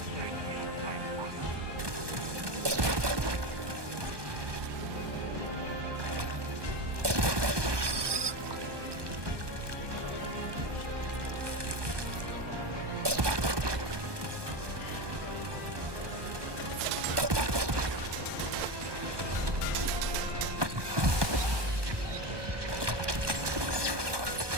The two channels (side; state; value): left; late; 1.2 ms